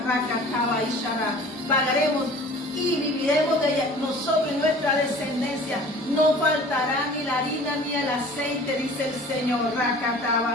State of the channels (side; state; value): both; normal; correlation 0.45